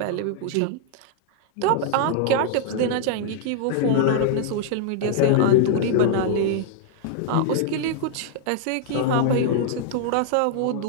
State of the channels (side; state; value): both; different; correlation -0.01